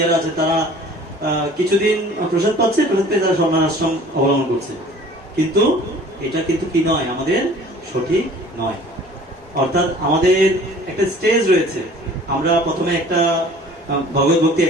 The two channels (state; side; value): normal; both; correlation 0.49